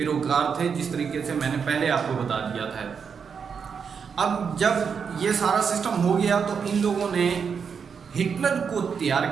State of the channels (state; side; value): quieter; left; 6.4 dB